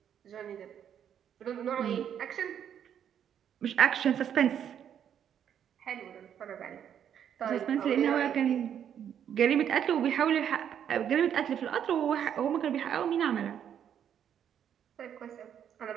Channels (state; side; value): quieter; left; 9.1 dB